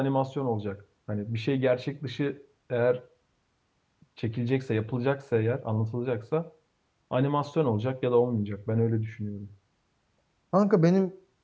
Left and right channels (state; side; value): identical; both; correlation 1.00